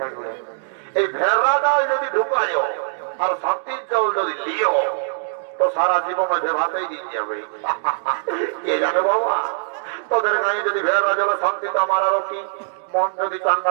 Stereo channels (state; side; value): silent; left; digital silence